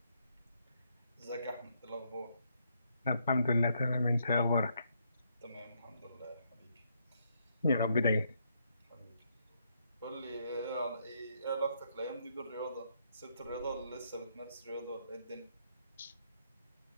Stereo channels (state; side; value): inverted; both; correlation -0.75